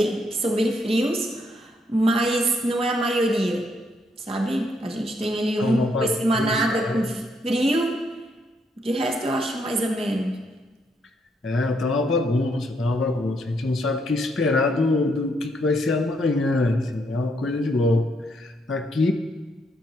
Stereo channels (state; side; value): normal; both; correlation 0.74